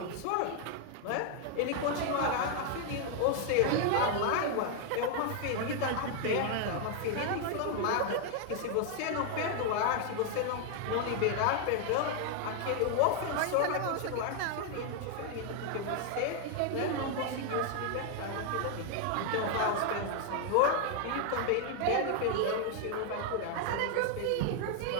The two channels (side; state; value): both; different; correlation 0.00